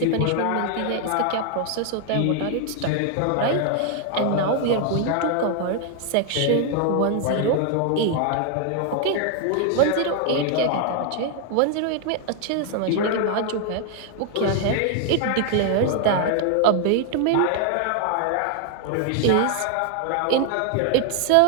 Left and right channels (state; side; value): different; both; correlation 0.00